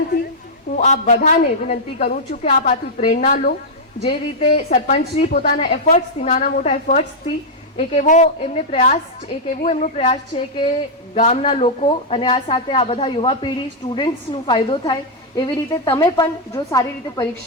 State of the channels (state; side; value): normal; both; correlation -0.05